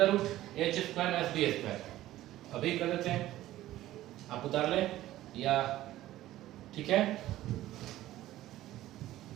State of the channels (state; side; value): quieter; left; 14.8 dB